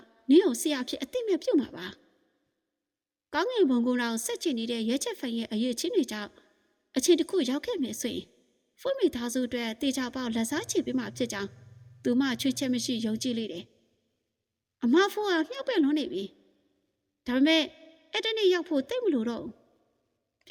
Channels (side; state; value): both; identical; correlation 1.00